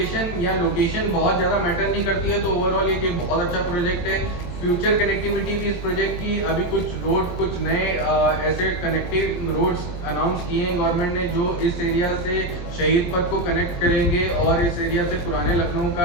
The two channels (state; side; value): late; right; 23 ms